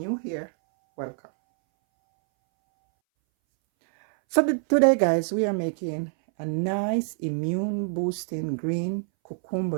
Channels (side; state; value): left; silent; 61 dB below the other